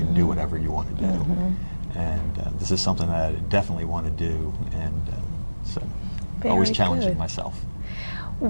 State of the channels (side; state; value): both; inverted; correlation -1.00